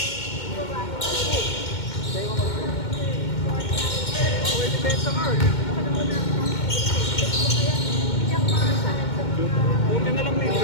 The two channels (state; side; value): late; right; 2.2 ms